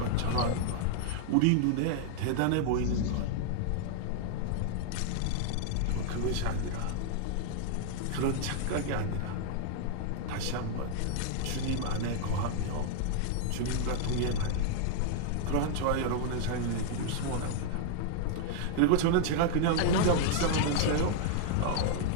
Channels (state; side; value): different; both; correlation 0.00